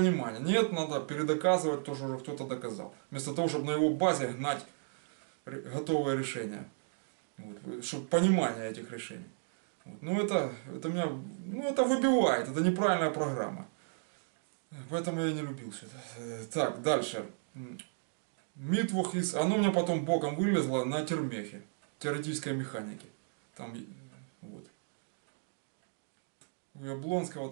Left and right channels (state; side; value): silent; left; digital silence